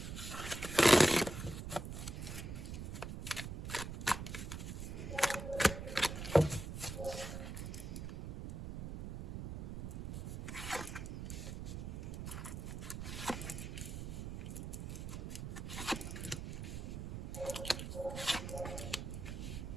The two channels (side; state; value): right; noise; rumble, 6 dB below the sound